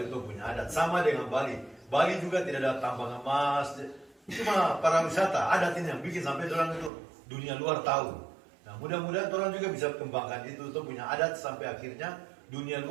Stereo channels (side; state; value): left; drops out; at 6.9 s